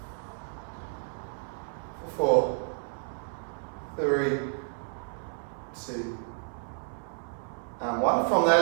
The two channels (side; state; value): left; silent; 57 dB below the other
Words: 4, 3, 2, and 1. From there,